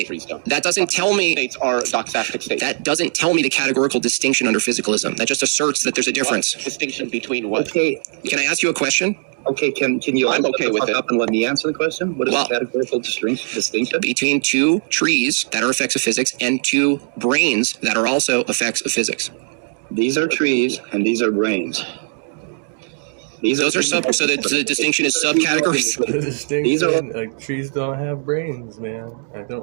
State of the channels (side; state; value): left; silent; 61 dB below the other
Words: trees don't. That doesn't tell me... States are doxastic states. That doesn't tell me the categorical distinction under physicalism. That just asserts that there's a difference. What? Distinction between what? Okay. Can I ask you a question? Okay, can you I'm okay with it. Up and let me answer the question? What is the categorical distinction? Between two trees that are effects of physics and two brains that are also effects of physics. These are trees and these are brains. Those are so the distinction is subcategories. The distinction, like trees don't have brains, man. I